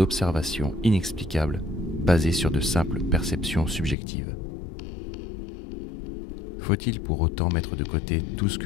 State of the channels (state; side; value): drops out; right; at 4.0 s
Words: inexplicables basées sur de simples perceptions subjectives. Faut-il pour autant mettre de côté tout ce